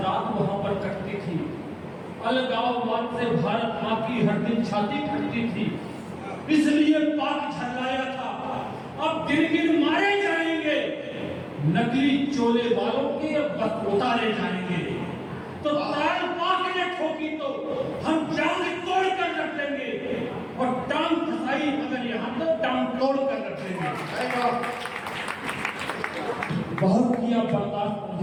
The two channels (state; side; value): identical; both; correlation 1.00